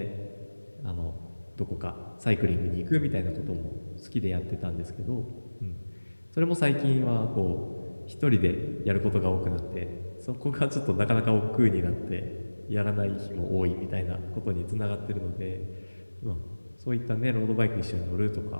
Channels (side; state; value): both; inverted; correlation -1.00